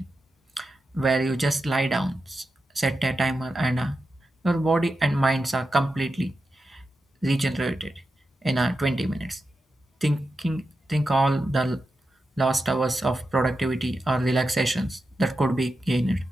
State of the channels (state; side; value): normal; both; correlation 0.89